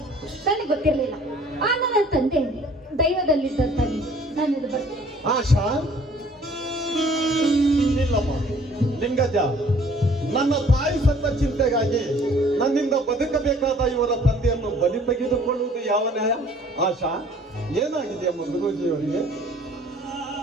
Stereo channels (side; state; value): both; normal; correlation 0.55